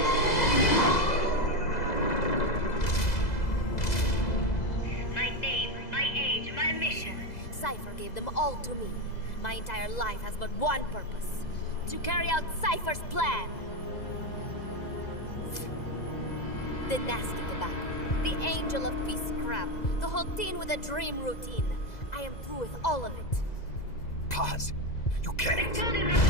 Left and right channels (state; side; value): late; right; 2.0 ms